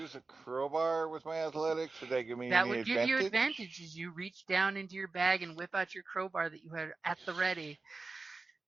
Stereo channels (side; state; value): left; quieter; 3.8 dB